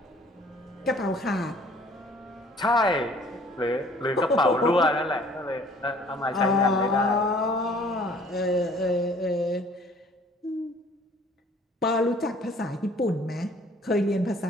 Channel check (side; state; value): both; normal; correlation 0.55